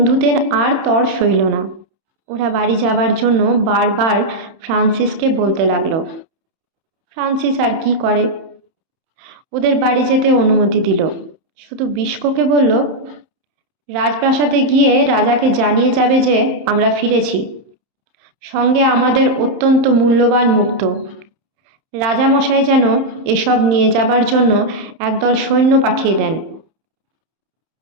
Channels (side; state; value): left; late; 31 ms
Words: আর তর সইল না। ওরা বাড়ি যাবার জন্য বারবার ফ্রান্সিসকে বলতে লাগলো। ফ্রান্সিস আর কি করে, ওদের বাড়ি যেতে অনুমতি দিল। শুধু বিস্কোকে বলল, রাজপ্রাসাদে গিয়ে রাজাকে জানিয়ে যাবে যে আমরা ফিরেছি, সঙ্গে আমাদের অত্যন্ত মূল্যবান মুক্ত। রাজামশাই যেন এসব নিয়ে যাবার জন্য একদল সৈন্য পাঠিয়ে দেন।